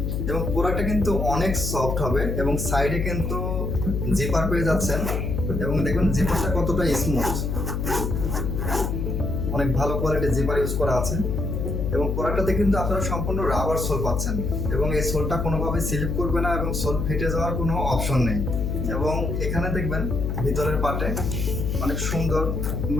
এবং প্রোডাক্টটা কিন্তু অনেক সফট হবে এবং সাইডে কিন্তু জিপার পেয়ে যাচ্ছেন এবং দেখুন জিপারটা কতটা স্মুথ, অনেক ভালো কোয়ালিটির জিপার ইউজ করা আছে এবং প্রোডাক্টটাতে কিন্তু আপনারা সম্পূর্ণ রাবার সোল পাচ্ছেন এবং এই সোলটা কোনোভাবে স্লিপ করবে না এবং সোল ফেটে যাওয়ার কোনো অপশন নেই। এবং এখানে দেখবেন ভিতরের পার্টে অনেক সুন্দর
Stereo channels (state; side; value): noise; left; hum, 1 dB below the sound